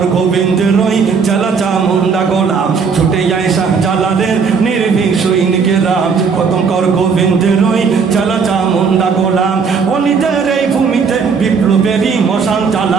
গোবিন্দের ওই চেলা চামুন্ডা গোলা। ছুটে যায় শাহজালালের নির্ভীক সৈনিকেরা, খতম কর গোবিন্দের ওই চেলা চামুন্ডা গোলা। অলিদের এই ভূমিতে বিপ্লবেরই মশাল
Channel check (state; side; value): quieter; left; 5.6 dB